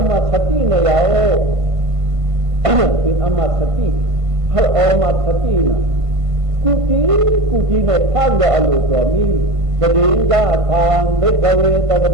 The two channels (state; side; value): late; left; 1.5 ms